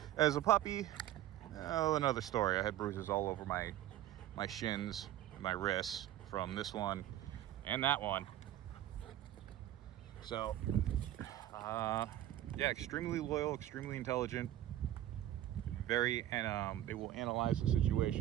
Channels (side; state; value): left; quieter; 13.0 dB